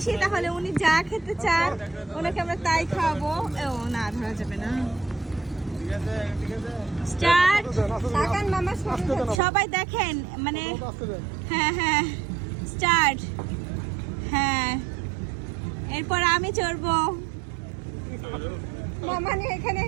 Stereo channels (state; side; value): drops out; left; at 9.4 s